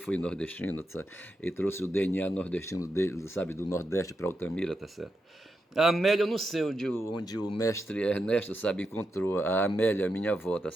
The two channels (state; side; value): normal; both; correlation 0.86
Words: nordestino, sabe? Ele trouxe o DNA nordestino dele, sabe, do Nordeste para Altamira, tá certo? A Amélia, eu não sei onde o mestre Ernesto, sabe, encontrou a Amélia, minha avó, tá